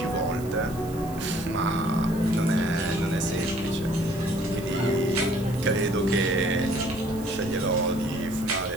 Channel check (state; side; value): noise; right; hiss, 19 dB below the sound